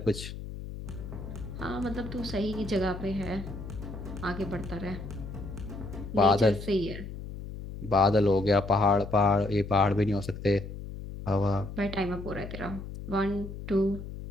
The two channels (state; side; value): noise; left; hum, 10 dB below the sound